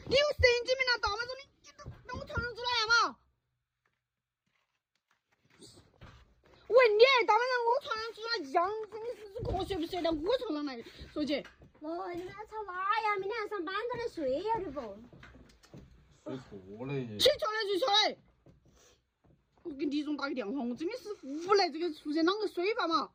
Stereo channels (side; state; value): both; identical; correlation 1.00